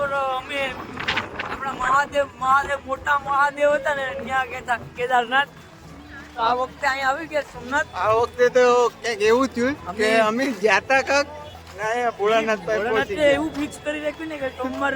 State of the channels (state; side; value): identical; both; correlation 1.00